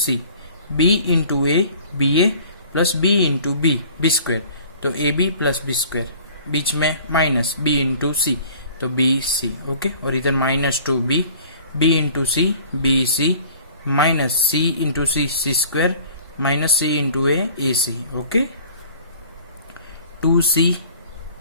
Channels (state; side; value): inverted; both; correlation -0.49